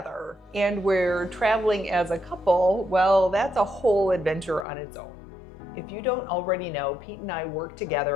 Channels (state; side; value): drops out; right; at 4.7 s